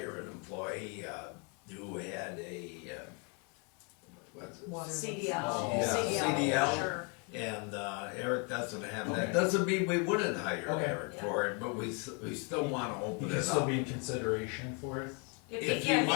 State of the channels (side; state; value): right; quieter; 34.4 dB